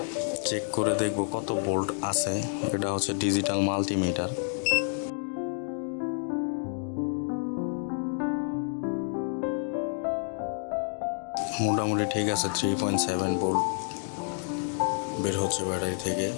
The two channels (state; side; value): silent; right; 59 dB below the other